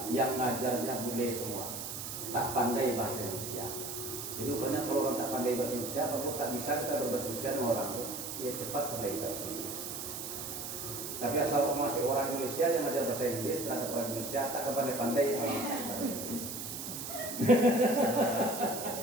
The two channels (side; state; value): right; noise; hiss, 6 dB below the sound